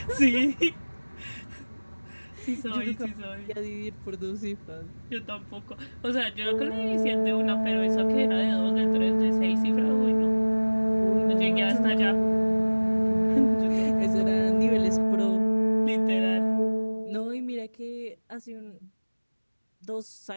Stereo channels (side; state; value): both; inverted; correlation -1.00